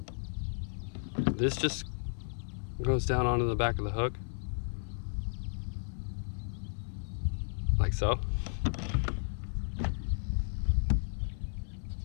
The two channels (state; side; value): silent; right; 55 dB below the other